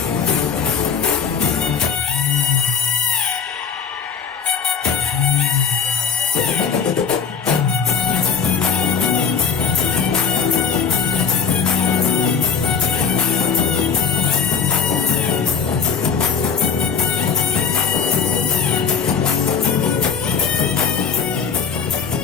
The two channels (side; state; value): right; quieter; 6.2 dB